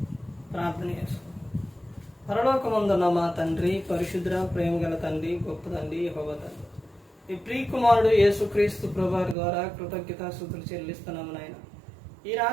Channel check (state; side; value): drops out; left; at 9.3 s